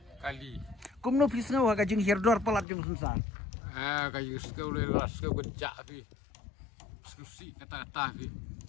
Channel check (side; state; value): right; drops out; at 2.7 s